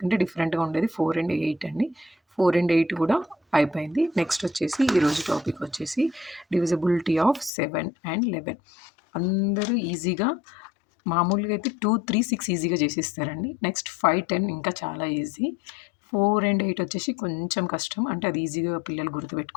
డిఫరెంట్‌గా ఉండేది 4 అండ్ 8 అండి. 4 అండ్ 8 కూడా అయిపోయింది. నెక్స్ట్ వచ్చేసి ఈరోజు టాపిక్ వచ్చేసి డివిజిబిలిటీ ఆఫ్ 7 అండ్ 11. అందరూ ఈజీగా మామూలుగా అయితే 2, 3, 6 ఈజీగా చేసేస్తారండి. నెక్స్ట్ 5, 10 ఇంకా చాలా ఈజీ. 4 అండ్ 8 వచ్చేసి కొంచెం కష్టం, అంటే అది ఈజీగా పిల్లలు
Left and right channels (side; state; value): right; drops out; at 7.5 s